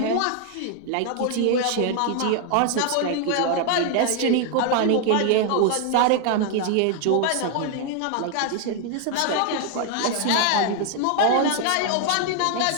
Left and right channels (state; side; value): different; both; correlation 0.00